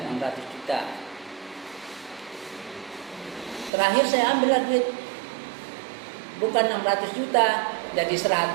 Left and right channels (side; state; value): left; drops out; at 3.7 s